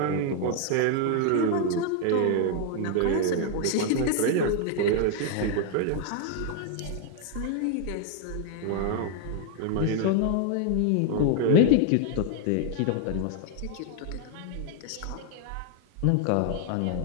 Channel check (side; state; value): both; different; correlation 0.00